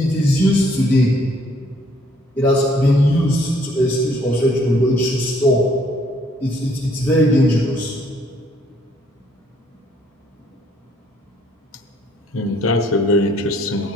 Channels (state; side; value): normal; both; correlation 0.65